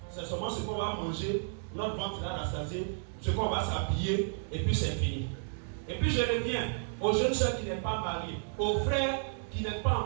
c'est seulement ce qu'on va manger, notre ventre va rassasier, ce qu'on va s'habiller, et puis c'est fini. Et puis je reviens aux jeunes soeurs qui n'êtes pas mariés, aux frères qui n'êtes pas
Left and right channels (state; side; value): silent; left; digital silence